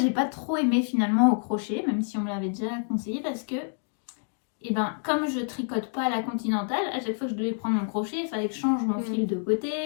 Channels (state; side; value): silent; right; 60 dB below the other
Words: pas trop aimé finalement au crochet, même si on me l'avait déjà conseillé, parce que, eh ben, comme je tricote pas à la continentale, à chaque fois que je devais prendre mon crochet, il fallait que je change mon fil de